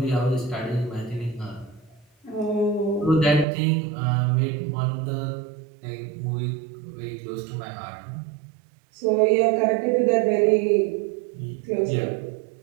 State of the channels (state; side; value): drops out; left; at 3.5 s